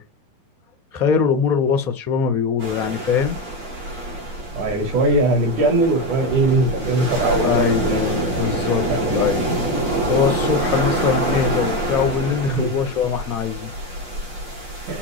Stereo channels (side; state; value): left; late; 8.4 ms